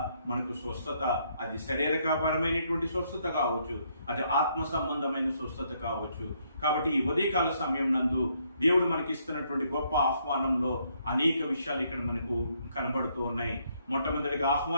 మనకు స్వస్థత, అది శరీరపరమైనటువంటి స్వస్థత కావచ్చు, అది ఆత్మ సంబంధమైన స్వస్థత కావచ్చు. కాబట్టి ఈ ఉదయకాల సమయం నందు దేవుడు మనకి ఇస్తున్నటువంటి గొప్ప ఆహ్వానంలో అనేక విషయాలు ఇక్కడ మనకు కనబడుతూ ఉన్నాయి. మొట్టమొదటిగా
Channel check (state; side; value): inverted; both; correlation -0.72